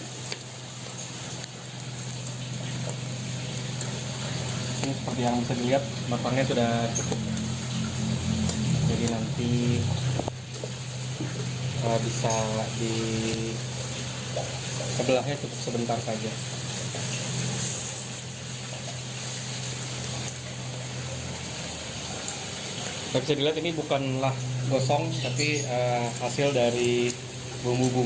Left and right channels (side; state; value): both; identical; correlation 1.00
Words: Ini seperti yang bisa dilihat, matangnya sudah cukup, jadi nanti bisa di sebelahnya cukup sebentar saja. Bisa dilihat ini bukanlah gosong, tapi hasil dari